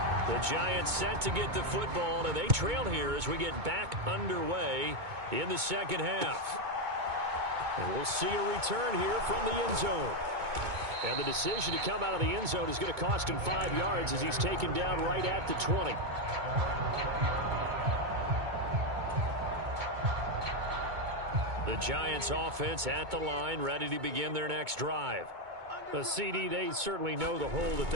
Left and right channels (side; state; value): left; late; 2.2 ms